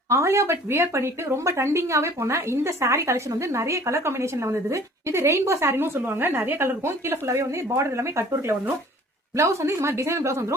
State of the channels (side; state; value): both; normal; correlation 0.51